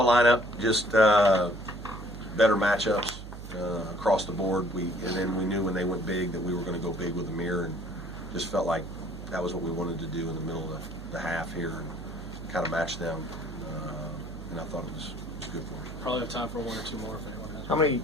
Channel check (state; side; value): noise; right; hum, 11 dB below the sound